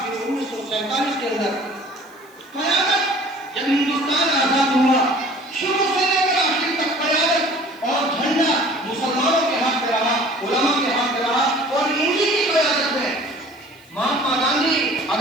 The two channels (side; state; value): left; noise; hiss, 28 dB below the sound